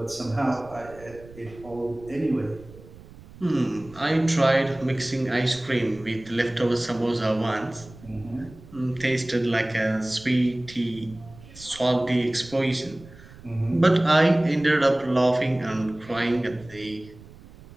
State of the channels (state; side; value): noise; right; rumble, 20 dB below the sound